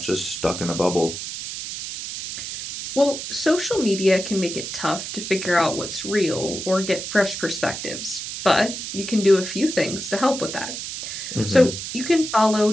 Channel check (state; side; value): noise; right; hiss, 7 dB below the sound